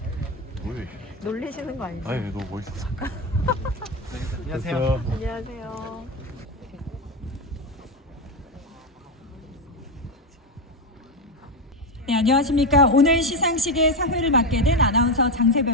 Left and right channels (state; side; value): normal; both; correlation 0.11